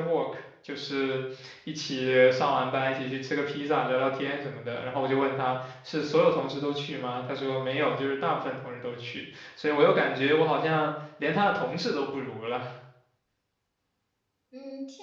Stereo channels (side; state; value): both; identical; correlation 1.00